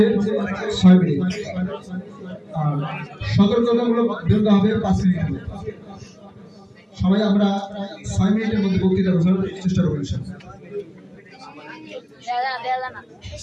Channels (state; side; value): identical; both; correlation 1.00